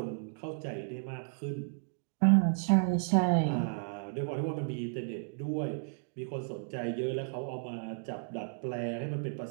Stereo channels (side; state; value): left; silent; digital silence